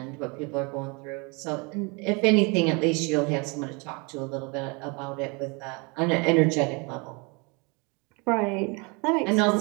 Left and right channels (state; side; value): quieter; left; 30.2 dB